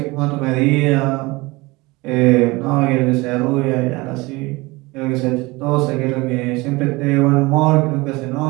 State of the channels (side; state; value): left; quieter; 22.9 dB